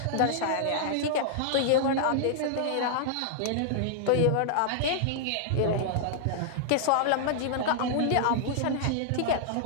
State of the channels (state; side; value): different; both; correlation -0.01